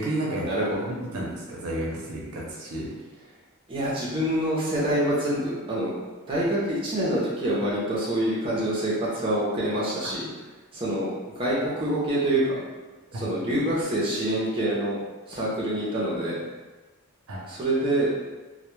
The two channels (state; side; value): normal; both; correlation 0.29